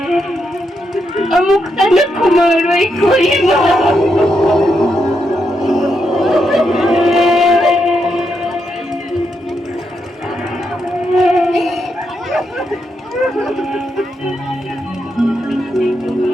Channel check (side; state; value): both; normal; correlation 0.82